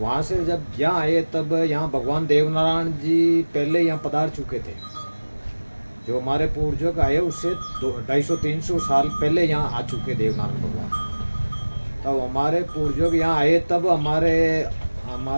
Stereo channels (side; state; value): both; inverted; correlation -1.00